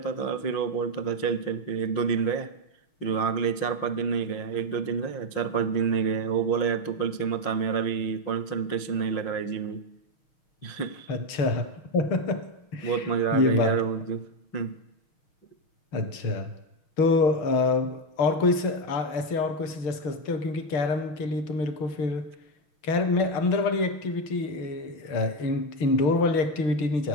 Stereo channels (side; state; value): right; late; 6.4 ms